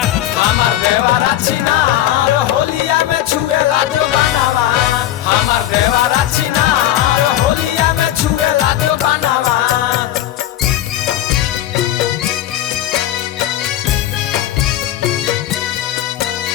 हमर देवरा छिनार होलिया में छुएला जो बनवा। हमर देवरा छिनार होलिया में छुएला जो बनवा।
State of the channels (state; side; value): quieter; right; 13.1 dB